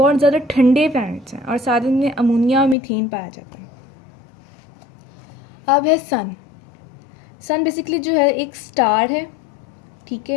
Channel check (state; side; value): drops out; right; at 2.8 s